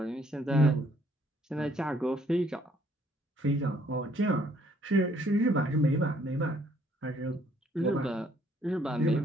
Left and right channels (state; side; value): normal; both; correlation 0.64